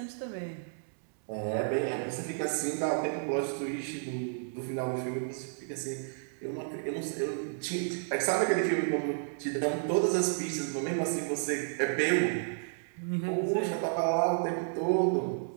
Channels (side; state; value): left; silent; digital silence